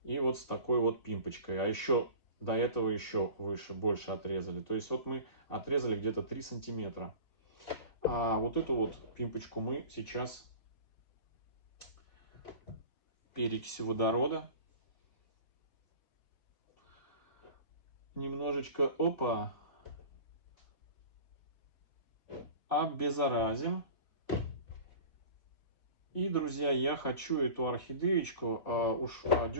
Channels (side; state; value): right; late; 4.0 ms